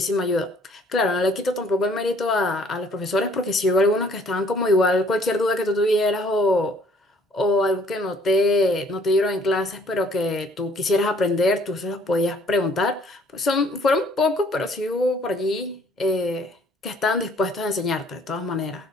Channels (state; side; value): normal; both; correlation 0.59